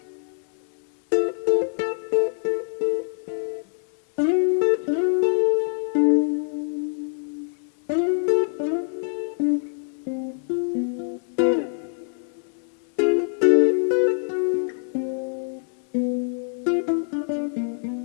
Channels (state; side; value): silent; right; 62 dB below the other